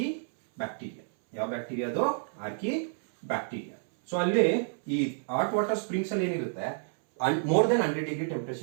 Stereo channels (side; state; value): left; silent; 58 dB below the other